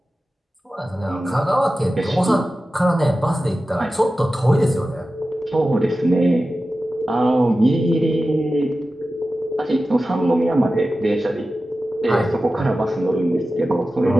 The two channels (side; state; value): both; normal; correlation 0.94